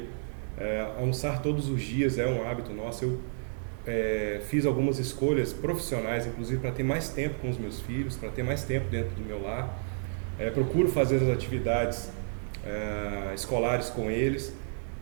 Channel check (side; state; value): left; silent; digital silence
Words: almoçar todos os dias é um hábito nosso. Eu fiz algumas escolhas profissionais, inclusive para ter mais tempo com os meus filhos, para ter mais tempo dentro do meu lar. Procuro fazer as atividades escolares com eles,